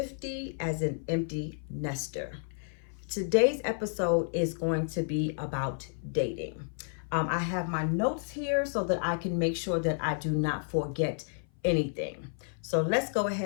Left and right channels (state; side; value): silent; right; 56 dB below the other